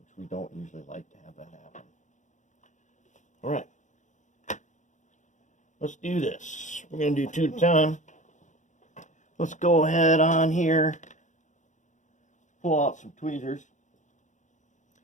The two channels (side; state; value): right; late; 0.36 ms